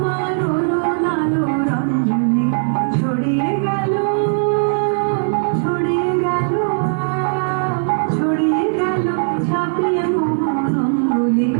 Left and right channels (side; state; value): left; silent; 67 dB below the other